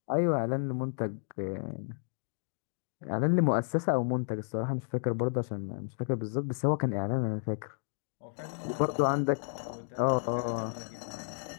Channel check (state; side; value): silent; right; digital silence